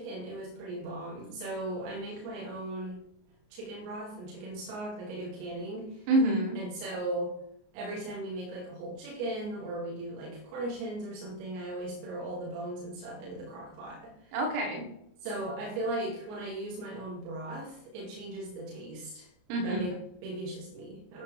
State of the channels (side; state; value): left; late; 33 ms